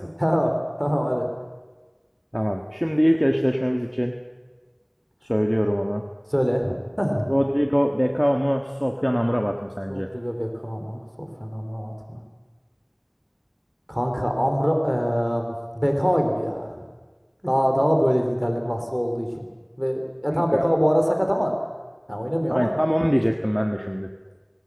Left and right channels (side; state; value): both; identical; correlation 1.00